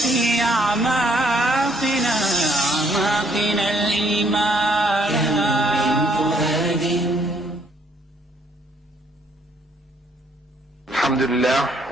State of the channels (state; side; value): normal; both; correlation 0.67